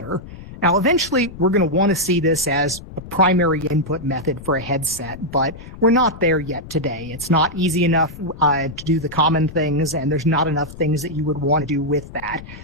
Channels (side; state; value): left; noise; rumble, 15 dB below the sound